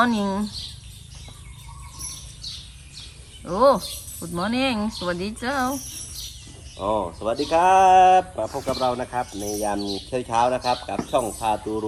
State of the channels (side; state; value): both; identical; correlation 1.00